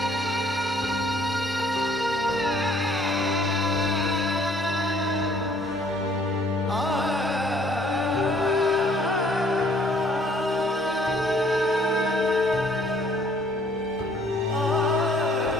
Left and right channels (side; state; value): both; normal; correlation 0.61